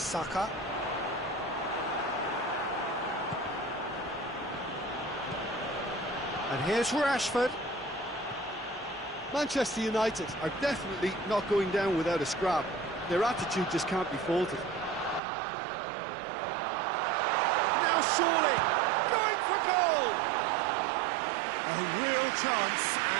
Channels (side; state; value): left; drops out; at 15.2 s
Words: And here's Rashford. Manchester United are definitely not going down without a scrap. Their attitude just can't be faulted. Now surely, going for goal! A real chance